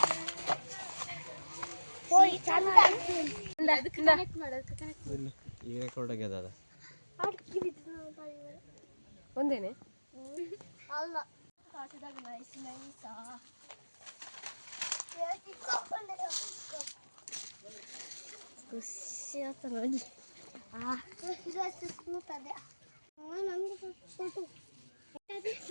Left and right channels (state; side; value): inverted; both; correlation -1.00